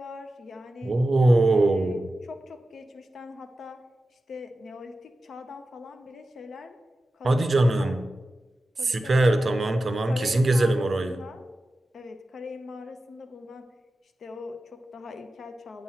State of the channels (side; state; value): both; normal; correlation 0.93